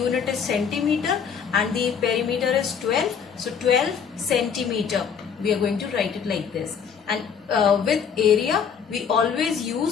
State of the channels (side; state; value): right; quieter; 7.0 dB